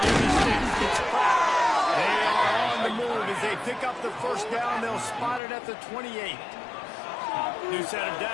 near the sticks, gets cracked. They are on the move as they pick up the first down. They'll spot it at the 28. New set of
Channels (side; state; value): right; drops out; at 5.4 s